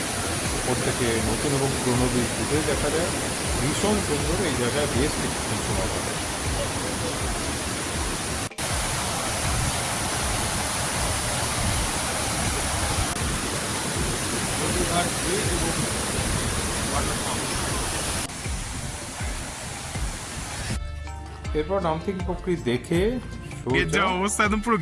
উপর থেকে নতুন এবং পুরনো ব্রিজ দুটোই দেখা যায়। ভীষণ সুন্দর, এই জায়গায় বেশ কিছুক্ষণ সময় কাটে। এরপর নামথিং পুকুরি দেখে যা অবস্থা, একদম পুরো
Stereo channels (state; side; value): identical; both; correlation 1.00